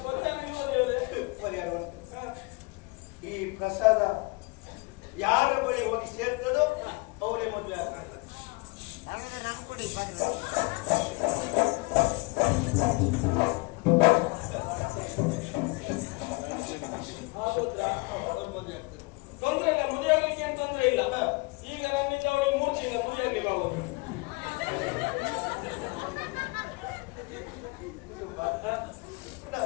ಪರಿಹಾರವನ್ನು ಈ ಪ್ರಸಾದ ಯಾರ ಬಳಿ ಹೋಗಿ ಸೇರ್ತದೋ ಅವರೇ ಮದುವೆ ಆಗ್ತಾರೆ. ತೊಂದ್ರೆ ಇಲ್ಲ, ಮದುವೆ ಆಗ್ಲಿಕ್ಕೆ ಏನ್ ತೊಂದ್ರೆ ಇಲ್ಲ. ಈಗ ನನ್ನಿಂದ ಅವಳಿಗೆ 3 ತಿಂಗಳು ಮದುವೆ ಆಗ್ಲಿಕ್ಕೆ ಆಗೋದು.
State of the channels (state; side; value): quieter; right; 27.3 dB